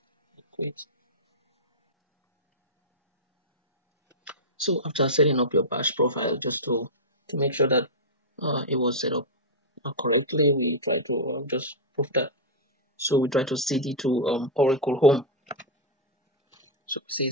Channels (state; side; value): normal; both; correlation -0.05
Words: quit. So after setting up your bash profile, just to make sure that it was set up correctly, we try to just prove that. So we try to cd to Oracle home. So say